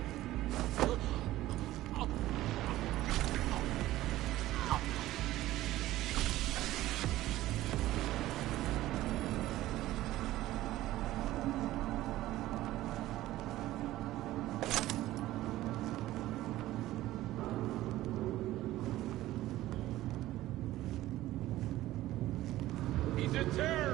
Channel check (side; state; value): left; quieter; 15.6 dB